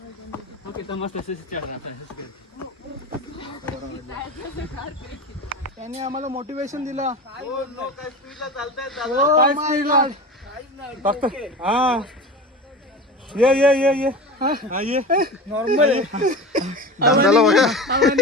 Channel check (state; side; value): normal; both; correlation 0.30